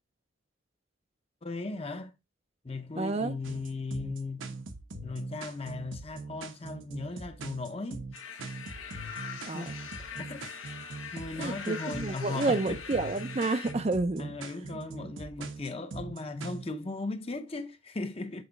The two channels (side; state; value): both; normal; correlation 0.54